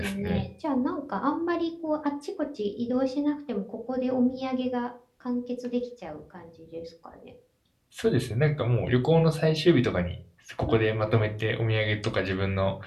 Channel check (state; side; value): identical; both; correlation 1.00